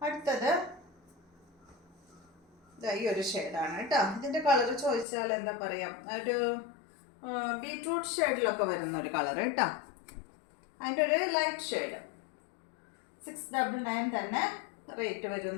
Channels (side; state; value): right; drops out; at 5.1 s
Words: അടുത്തത് ഈ ഒരു ഷെയ്ഡാണ് കേട്ടോ. ഇതിൻ്റെ കളർ ചോദിച്ചാൽ എന്താ പറയാം, ഒരു ബീട്രൂട്ട് ഷെയ്ഡിലൊക്കെ വരുന്ന ഒരു കളർ കേട്ടോ. അതിൻ്റെ ഒരു ലൈറ്റ് ഷെയ്ഡ്. 699 തന്നെ റേറ്റ്